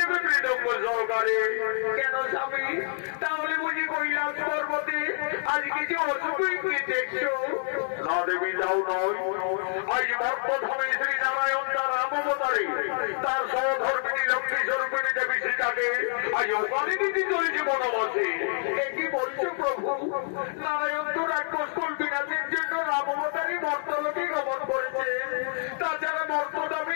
মৃদঙ্গ সহকারে। কেন স্বামী, তাহলে বুঝি কৈলাস পর্বতে আজ কিছু অসুখই দেখছো? না দেবী, তাও নয়। আজ মর্মধামে শ্রী নারায়ণ তার রামবতারে তার সহধর্মিনী লক্ষ্মী স্বরূপিণী দেবী সীতাকে আজ ওখানে দিতে চলেছে বনবাসে। কি বলছো প্রভু? নারায়ণ তো রাক্ষসকুল বিনাশের জন্য রামবতারই মর্তলোকে গমন করেছে। তাছাড়া মর্তদামী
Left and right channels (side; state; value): right; silent; 60 dB below the other